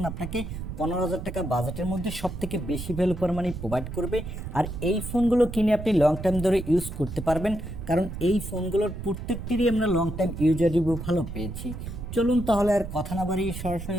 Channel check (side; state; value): right; noise; rumble, 8 dB below the sound